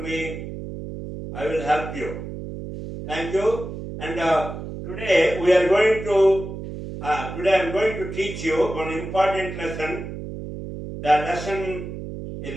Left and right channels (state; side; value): noise; right; hum, 9 dB below the sound